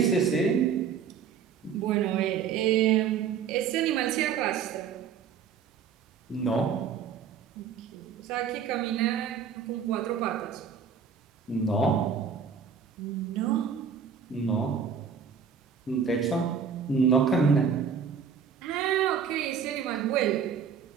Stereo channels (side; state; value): left; quieter; 6.8 dB